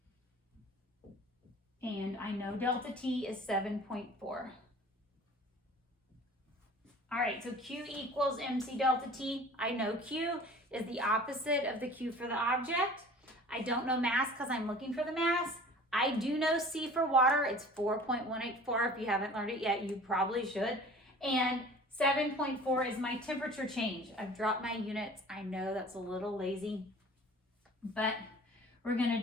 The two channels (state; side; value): normal; both; correlation 0.45